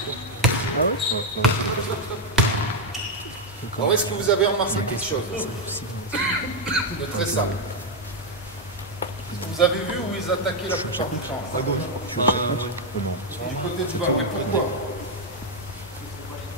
Alors, est-ce que vous avez remarqué quelque chose de très simple? Vous avez vu où ils attaquaient la plupart du temps? À gauche. Du côté du ballon. Pourquoi?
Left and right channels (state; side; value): normal; both; correlation 0.02